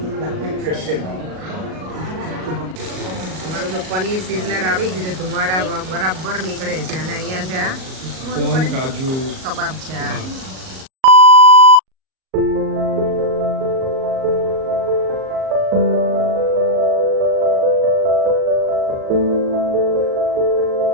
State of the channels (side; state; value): left; late; 38 ms